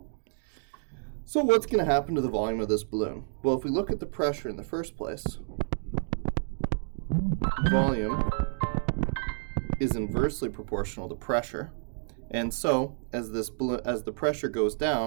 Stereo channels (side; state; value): left; silent; 58 dB below the other